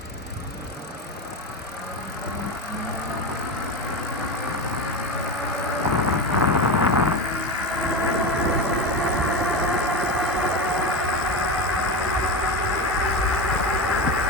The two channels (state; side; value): normal; both; correlation 0.20